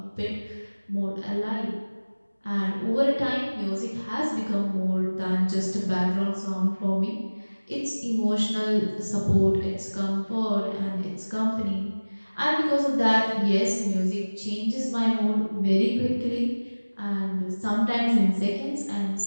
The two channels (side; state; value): both; inverted; correlation -1.00